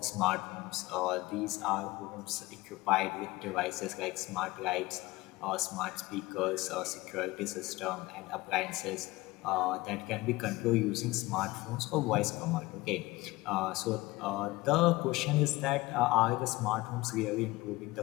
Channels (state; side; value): quieter; right; 20.4 dB